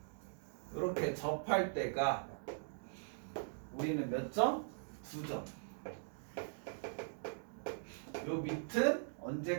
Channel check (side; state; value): left; silent; digital silence